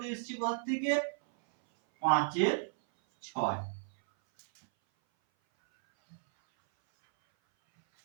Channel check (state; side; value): silent; left; 56 dB below the other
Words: এসছে কোথা থেকে? 5-এর 6।